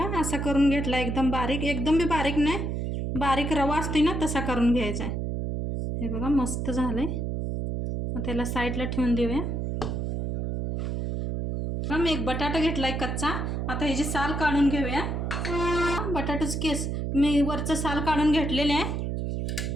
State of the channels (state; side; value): noise; right; hum, 2 dB below the sound